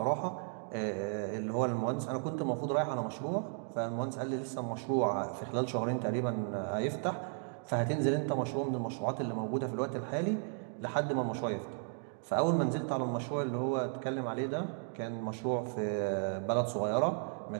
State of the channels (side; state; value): left; silent; 55 dB below the other